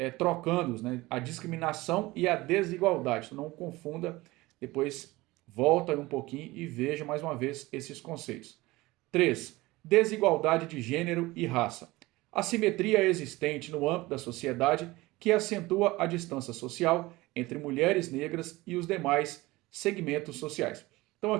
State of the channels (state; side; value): quieter; left; 20.2 dB